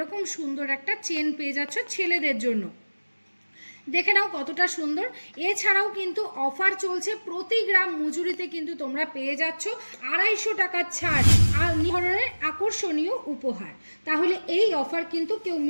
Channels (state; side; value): inverted; both; correlation -1.00